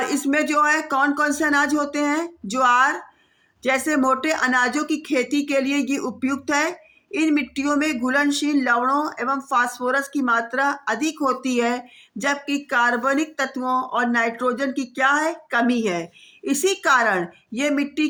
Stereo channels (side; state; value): both; identical; correlation 1.00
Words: इसमें जो है कौन कौन से अनाज होते हैं, ज्वार जैसे मोटे अनाजों की खेती के लिए ये उपयुक्त है। इन मिट्टियों में घुलनशील लवणों एवं फास्फोरस की मात्रा अधिक होती है, जबकि कार्बनिक तत्वों और नाइट्रोजन की क्या है, कमी है। इसी कारण ये मिट्टी